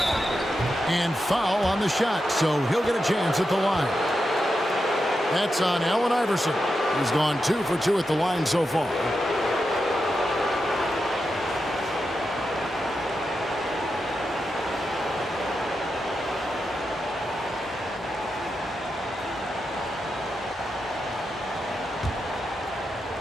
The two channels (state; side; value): normal; both; correlation 0.88